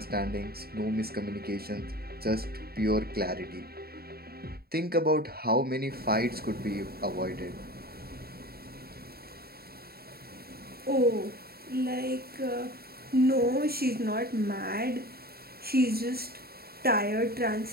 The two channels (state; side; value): late; left; 0.45 ms